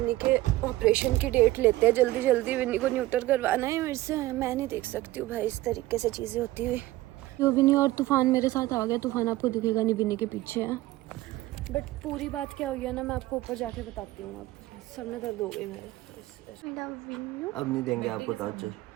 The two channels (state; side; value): quieter; left; 17.1 dB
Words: के ऑपरेशन की डेट लेते हैं जल्दी जल्दी, विन्नी को न्यूटर करवाना है मेरे से। मैं नहीं देख सकती हूँ भाई इस तरीके से चीज़ें होती हुई। तो विन्नी और तूफान मेरे साथ आ गया, तूफान आपको दिखेगा नहीं, विन्नी के पीछे है। बट पूरी बात क्या हुई है ना, मैं आपको ऊपर जाके बताती हूँ। अब सर में दर्द हो गई मेरे। मेरा विन्नू अब नहीं देंगे आपको टॉर्चर।